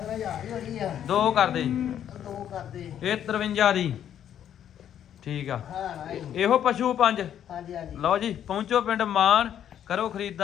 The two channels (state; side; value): quieter; right; 9.9 dB